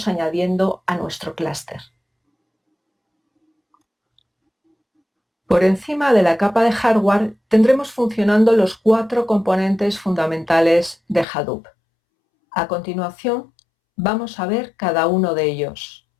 añadiendo a nuestro clúster. Por encima de la capa de hardware tendremos funcionando los 4 componentes fundamentales de Hadoop. A continuación, vamos a ver cada uno de ellos.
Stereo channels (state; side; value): drops out; right; at 11.2 s